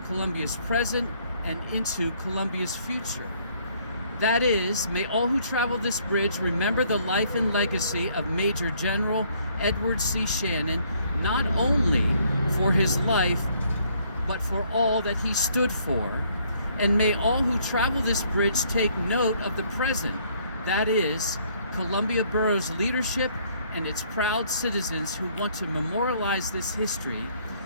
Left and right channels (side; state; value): both; inverted; correlation -0.65